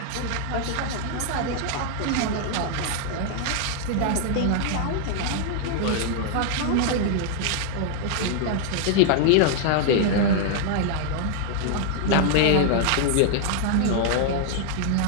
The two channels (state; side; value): different; both; correlation -0.01